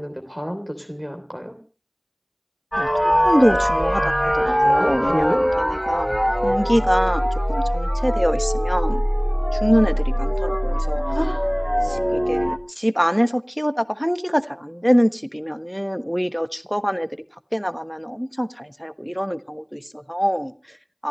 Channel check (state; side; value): identical; both; correlation 1.00